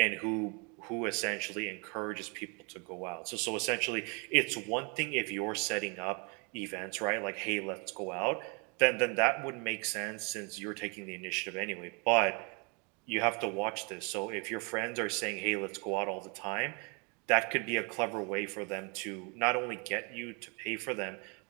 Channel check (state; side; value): quieter; left; 33.5 dB